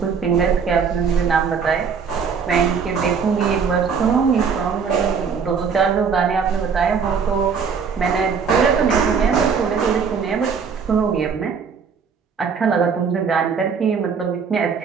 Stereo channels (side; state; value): left; quieter; 6.1 dB